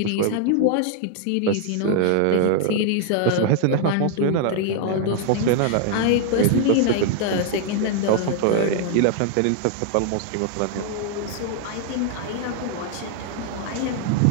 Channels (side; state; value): both; different; correlation 0.00